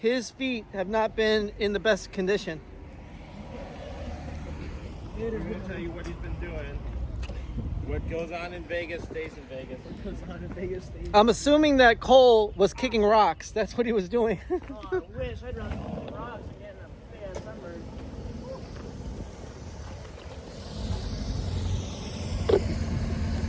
feet have not been in the best condition. I'm going to tell you what he's been doing. What goes on in Vegas stays in Vegas. What goes on in Vegas stays. I'm assuming that Cole was kicking rocks. That's what he was doing. Oh, I wish I'd run rocks and get in a bad sunburn.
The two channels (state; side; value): identical; both; correlation 1.00